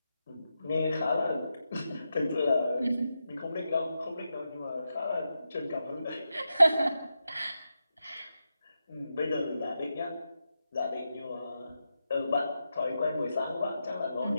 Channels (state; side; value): inverted; both; correlation -0.88